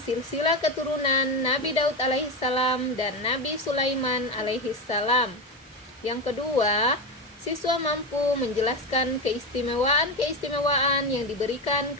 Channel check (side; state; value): both; normal; correlation 0.16